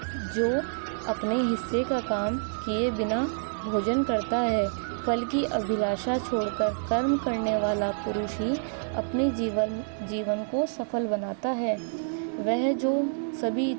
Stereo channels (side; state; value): left; silent; digital silence